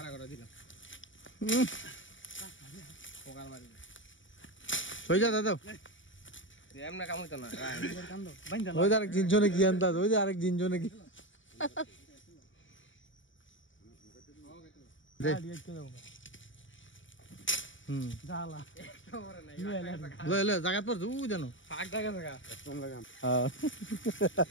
করে দিলাম পোকার মারি হয়ে যা দাদা এমনা কাম হইতো না কান্দো বাইন্দা ওই যে আরেক জিনজনে কি আনতা ওই যে আরেক জিনজনে কি দে হুম জালা লে জায়গা পর তুই জানো ফাক জায়গা জায়গা হ্যাঁ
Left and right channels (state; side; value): late; right; 0.56 ms